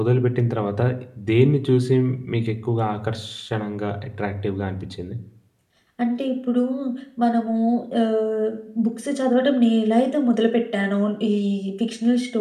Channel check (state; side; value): identical; both; correlation 1.00